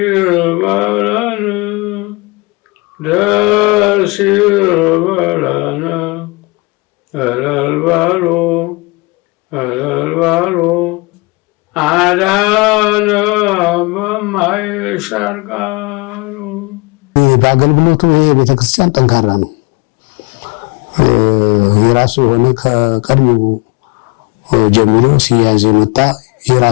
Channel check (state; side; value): quieter; right; 25.7 dB